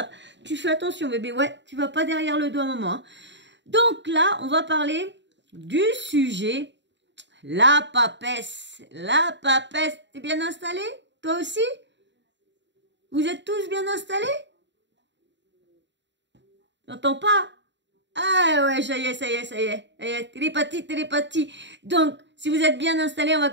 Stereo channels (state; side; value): late; left; 0.52 ms